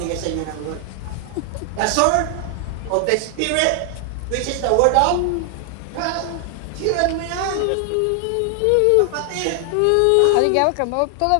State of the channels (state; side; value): different; both; correlation 0.00